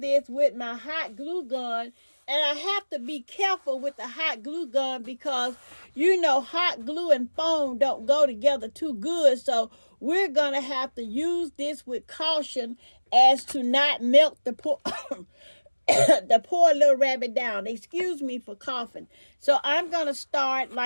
with my hot glue gun. And I have to be careful with the hot glue gun because, you know, hot glue and foam don't go together too good. So we're going to have to use this with caution as to not melt the poor, the poor little rabbit down. Excuse me for coughing. So I'm going to start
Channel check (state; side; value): inverted; both; correlation -1.00